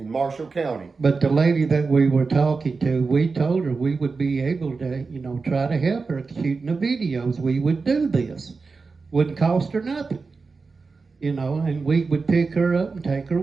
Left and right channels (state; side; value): quieter; left; 4.4 dB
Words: Marshall County. But the lady that we were talking to, we told her we would be able to, try to help her shooting the videos. We would do this. Wouldn't cost her nothing. And we would pick her up and take her